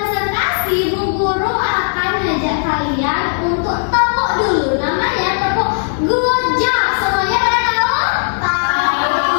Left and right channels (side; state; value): right; silent; digital silence